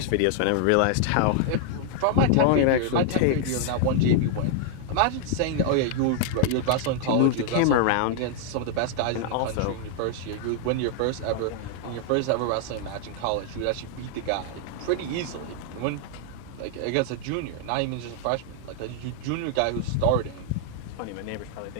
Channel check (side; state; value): both; different; correlation 0.00